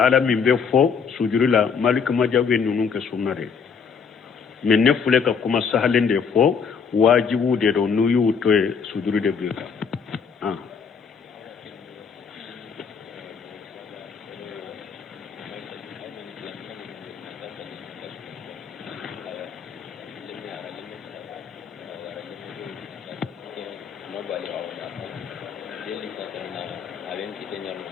be fo sujudi la malik majah be nunun ke sunnare mais ne fule ka kuma sahalende fo wajibu de do nuyu to sujudi de bika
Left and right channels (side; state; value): right; quieter; 6.2 dB